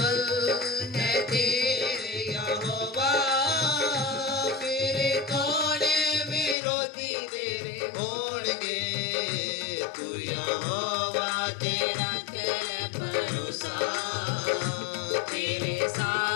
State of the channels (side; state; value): right; drops out; at 6.6 s